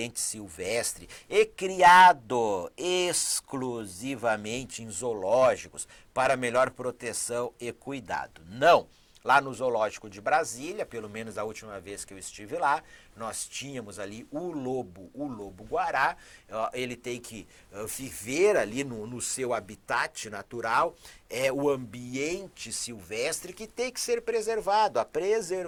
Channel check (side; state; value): both; identical; correlation 1.00